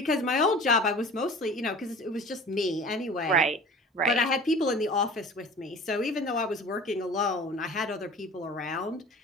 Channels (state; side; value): normal; both; correlation 0.42